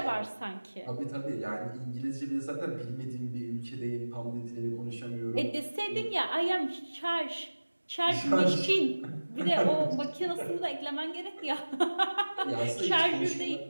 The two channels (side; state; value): both; inverted; correlation -1.00